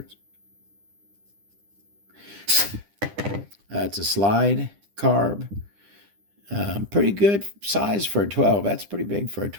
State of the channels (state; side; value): late; left; 9.9 ms